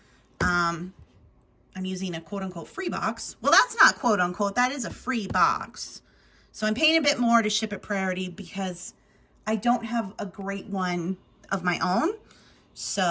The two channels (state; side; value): identical; both; correlation 1.00